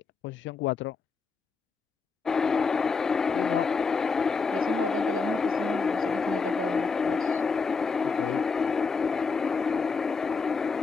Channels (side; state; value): right; quieter; 4.8 dB